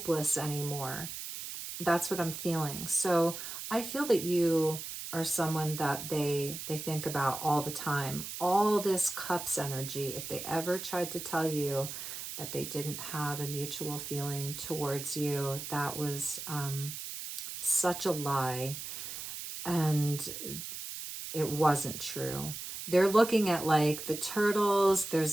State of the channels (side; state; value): right; noise; hiss, 8 dB below the sound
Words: anymore. That's what I'm feeling. So I feel that you are someone that they think about all the time. All this cups energy, if they ever tried to tell you that they didn't have a mutual feeling towards you, that was such a lie. And it wasn't true. They're looking at like the turtles. There's